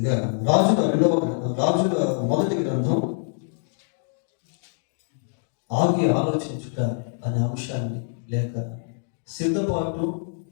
రాజుల మొదటి గ్రంథం ఆగి ఆలోచించుట అనే అంశాన్ని, లేక సిద్ధపాటు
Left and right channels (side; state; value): right; silent; digital silence